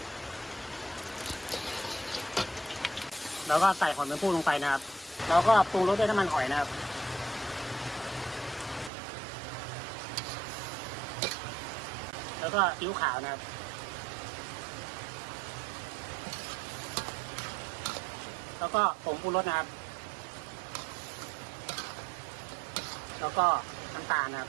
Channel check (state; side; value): drops out; left; at 8.9 s